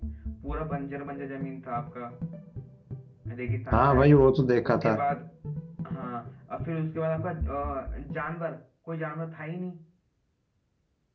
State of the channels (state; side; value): identical; both; correlation 1.00